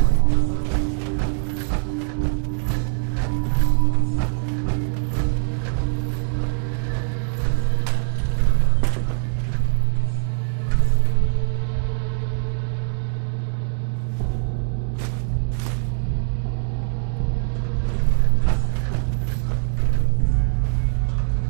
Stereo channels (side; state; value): left; silent; 64 dB below the other